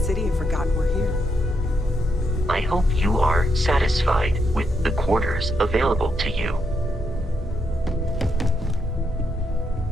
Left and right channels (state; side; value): normal; both; correlation 0.80